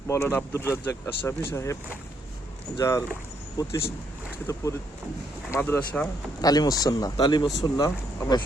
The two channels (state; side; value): normal; both; correlation 0.73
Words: মাওলানা আব্দুর রাজ্জাক আশরাফী সাহেব, যার প্রতিষ্ঠিত মাদ্রাসা তালিমুস সুন্নাহ আমরা